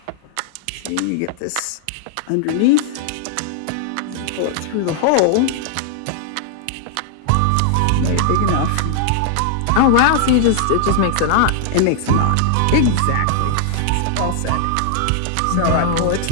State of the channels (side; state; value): both; different; correlation 0.00